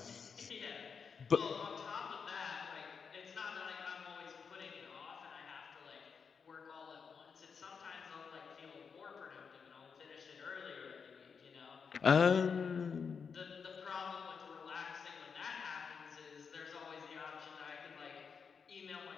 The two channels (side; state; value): right; quieter; 6.0 dB